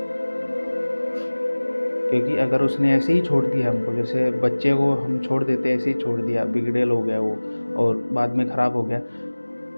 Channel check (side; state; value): both; inverted; correlation -1.00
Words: क्योंकि अगर उसने ऐसे ही छोड़ दिया हमको, जैसे बच्चे को हम छोड़ देते ऐसे ही छोड़ दिया, बिगड़ेल हो गया वो और बाद में ख़राब हो गया,